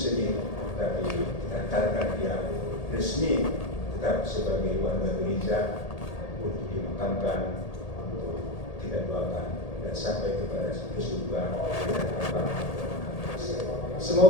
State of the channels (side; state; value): right; late; 1.8 ms